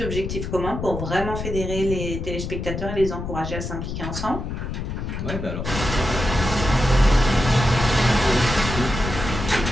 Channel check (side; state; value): left; noise; rumble, 5 dB below the sound